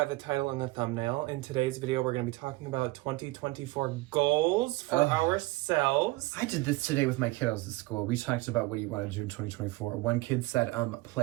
the title and the thumbnail, in today's video we're going to be talking about 2024 goals for ourselves. I did this today with my kiddos at school. We talked about what you want to do in 2024. One kid said,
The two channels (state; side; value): quieter; left; 20.9 dB